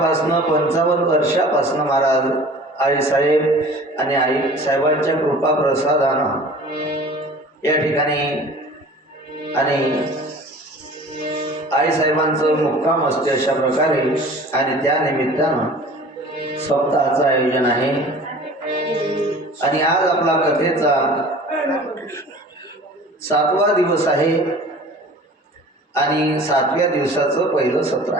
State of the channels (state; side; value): normal; both; correlation 0.44